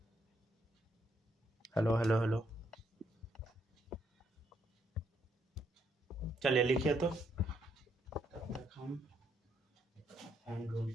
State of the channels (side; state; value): both; normal; correlation 0.74